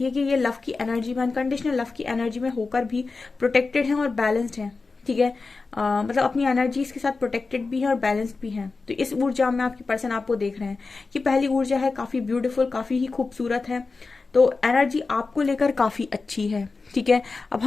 है कि ये लव की एनर्जी में, अनकंडीशनल लव की एनर्जी में होकर भी प्रोटेक्टेड है और बैलेंस्ड है, ठीक है। मतलब अपनी एनर्जीज के साथ प्रोटेक्टेड भी है और बैलेंस्ड भी है। तो इस ऊर्जा में आपके पर्सन आपको देख रहे हैं कि पहली ऊर्जा है काफी ब्यूटीफुल, काफी ही खूबसूरत है, तो एनर्जी आपको लेकर काफी अच्छी है, ठीक है। अब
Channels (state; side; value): quieter; right; 4.1 dB